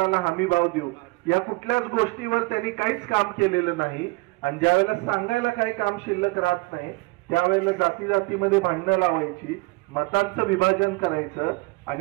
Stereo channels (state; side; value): quieter; left; 24.3 dB